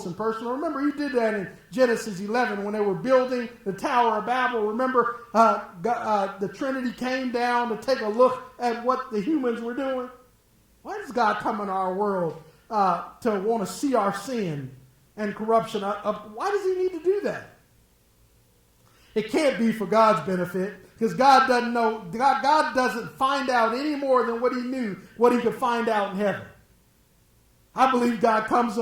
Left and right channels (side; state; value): both; identical; correlation 1.00